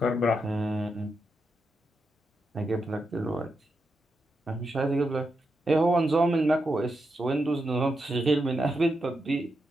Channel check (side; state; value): both; normal; correlation 0.85